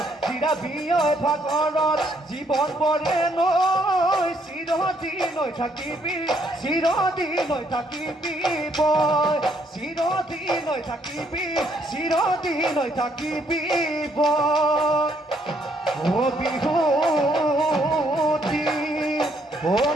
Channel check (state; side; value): normal; both; correlation 0.70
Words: চিৰাবিয় ভাগৰত জীৱন বৰে নৈ চিৰদিন থাকিবি চিৰদিন থাকিবি বয় চিৰদিন থাকিবি চিৰদিন থাকিবি বয় ও বিহুতি ও